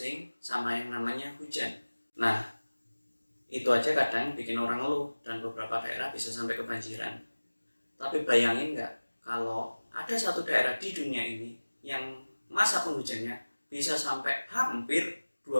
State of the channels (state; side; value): inverted; both; correlation -1.00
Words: sama yang namanya hujan. Nah, itu aja kadang bikin orang ngeluh dan beberapa daerah bisa sampai kebanjiran. Tapi bayangin nggak kalau ada satu daerah di dunia ini yang masa penghujannya bisa sampai hampir